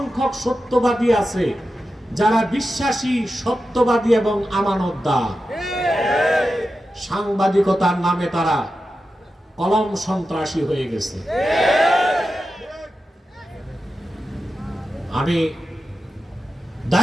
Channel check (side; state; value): both; normal; correlation 0.91